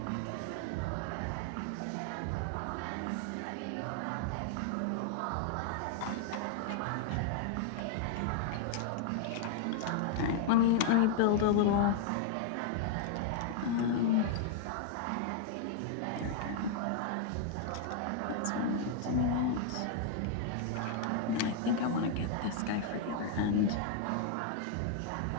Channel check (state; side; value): different; both; correlation 0.00